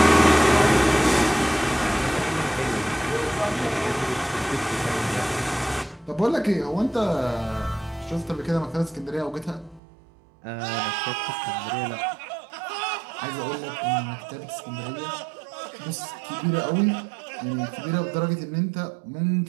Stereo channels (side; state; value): left; drops out; at 9.8 s